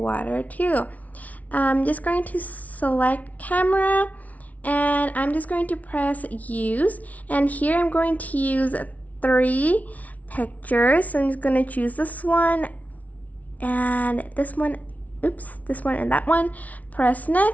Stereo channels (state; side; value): late; right; 0.070 ms